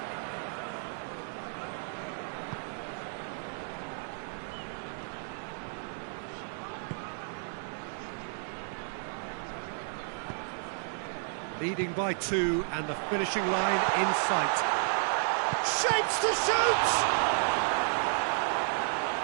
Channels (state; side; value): silent; left; 56 dB below the other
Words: Leading by 2 and the finishing line in sight. Shapes to shoot!